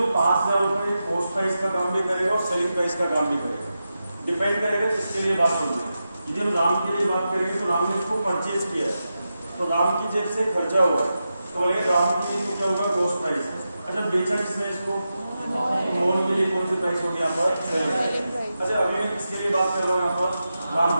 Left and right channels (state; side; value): inverted; both; correlation -0.90